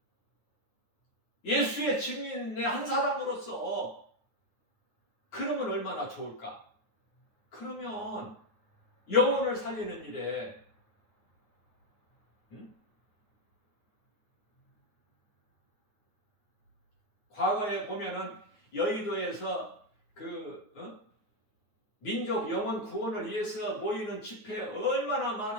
예수의 증인의 한 사람으로서 그러면 얼마나 좋을까? 그러면 영혼을 살리는 일에, 과거에 보면은 여의도에서 민족 영혼 구원을 위해서 모이는 집회에 얼마나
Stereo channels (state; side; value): late; right; 9.4 ms